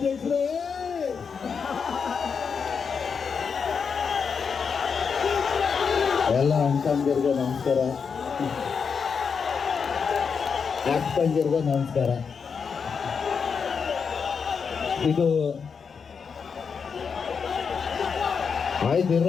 ಎಲ್ಲ ಅಣ್ತಂದಿರ್ಗೂ ನಮಸ್ಕಾರ, ಅಕ್ಕಂದಿರ್ಗೂ ನಮಸ್ಕಾರ. ಇದು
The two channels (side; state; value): right; quieter; 6.0 dB